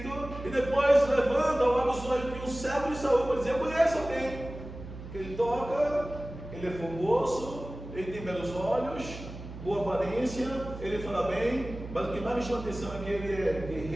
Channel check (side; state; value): right; noise; hum, 12 dB below the sound